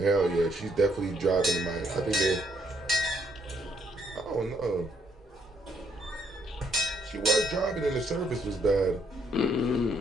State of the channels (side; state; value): both; normal; correlation 0.71